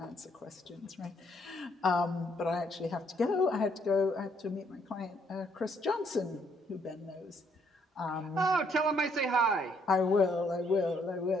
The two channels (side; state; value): both; normal; correlation 0.69